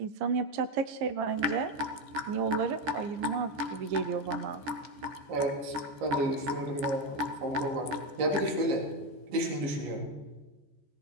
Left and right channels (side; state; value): left; late; 14 ms